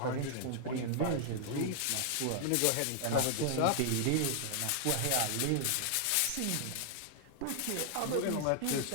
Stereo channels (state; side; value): different; both; correlation -0.01